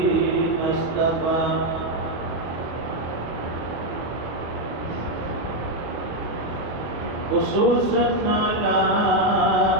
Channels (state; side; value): late; left; 24 ms